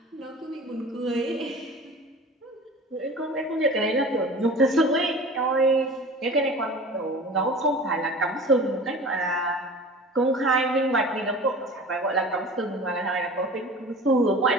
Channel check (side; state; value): both; normal; correlation 0.39